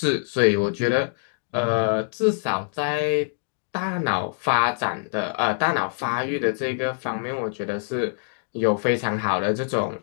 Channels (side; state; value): right; silent; 60 dB below the other